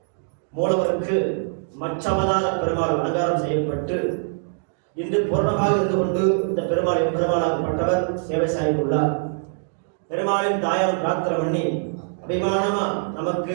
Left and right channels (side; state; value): left; silent; digital silence